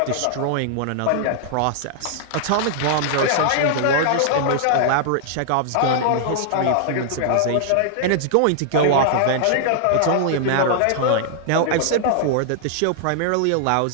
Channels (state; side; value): different; both; correlation -0.01